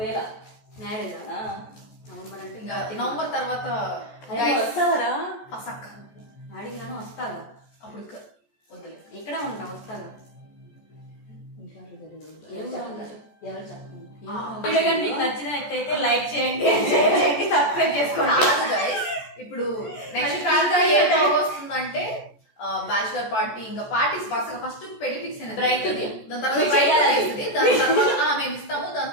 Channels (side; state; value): right; late; 14 ms